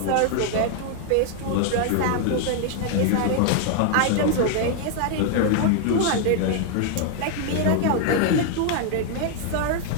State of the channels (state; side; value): different; both; correlation 0.00